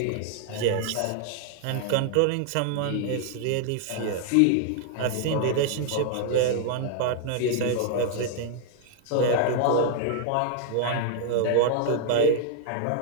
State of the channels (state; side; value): different; both; correlation 0.00